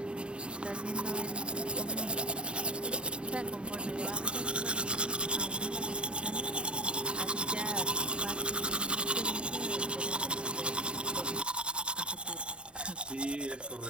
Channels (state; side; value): late; left; 0.052 ms